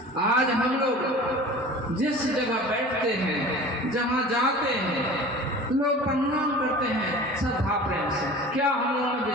आज हम लोग जिस जगह बैठते हैं, जहाँ जाते हैं, लोग प्रणाम करते हैं श्रद्धा प्रेम से। क्या हम लोगों में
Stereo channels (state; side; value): normal; both; correlation 0.39